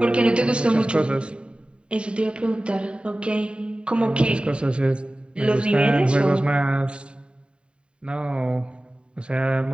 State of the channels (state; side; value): late; left; 0.053 ms